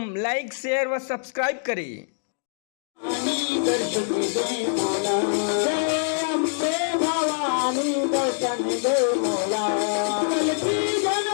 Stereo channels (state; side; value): silent; right; digital silence